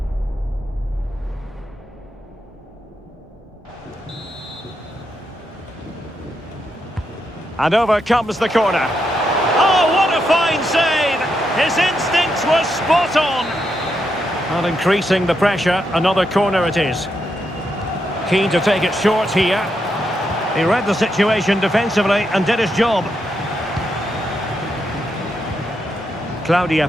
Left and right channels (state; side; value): normal; both; correlation 0.82